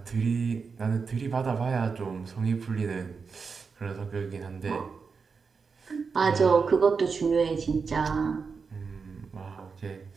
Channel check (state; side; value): quieter; left; 5.2 dB